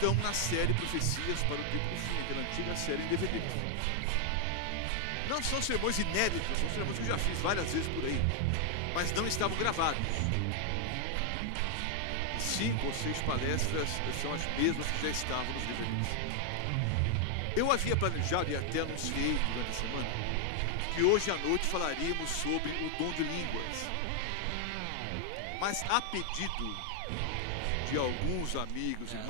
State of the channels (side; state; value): both; different; correlation 0.00